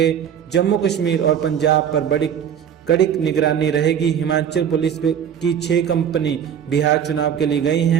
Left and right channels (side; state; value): left; quieter; 8.6 dB